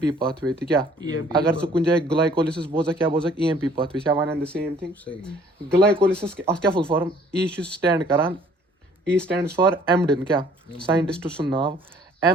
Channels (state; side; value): normal; both; correlation 0.57